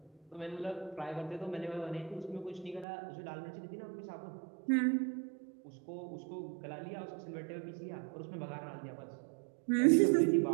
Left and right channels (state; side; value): drops out; left; at 2.9 s